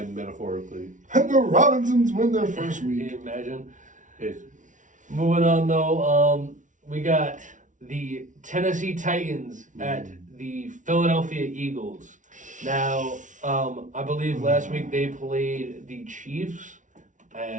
metaphorically. And the Robinsons win their first Can week. you imagine? It's, Moving on though, we got the Tennessee Titans at the Philadelphia Eagles. Now, I believe last week they played the Chiefs,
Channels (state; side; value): late; left; 0.37 ms